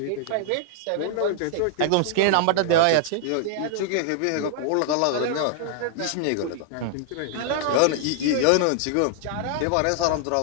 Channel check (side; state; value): both; different; correlation -0.01